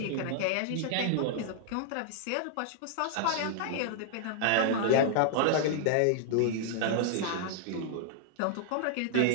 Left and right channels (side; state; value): both; different; correlation -0.01